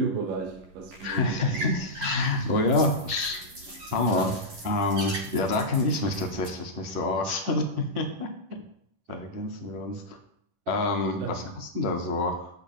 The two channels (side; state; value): left; late; 11 ms